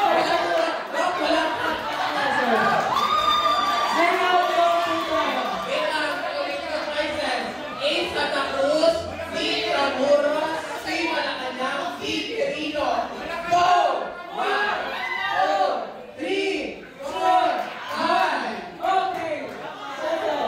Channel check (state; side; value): identical; both; correlation 1.00